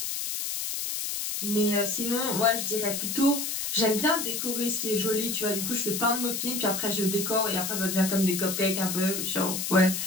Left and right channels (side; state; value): left; noise; hiss, 3 dB below the sound